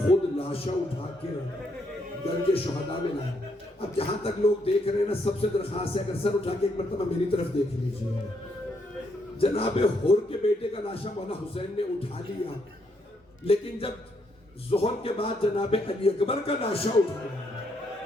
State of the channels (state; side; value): normal; both; correlation 0.75